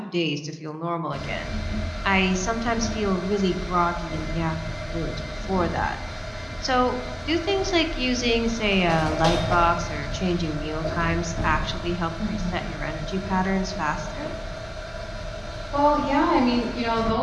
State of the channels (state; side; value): identical; both; correlation 1.00